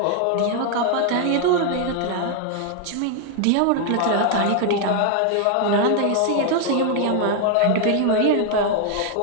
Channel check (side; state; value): both; different; correlation 0.00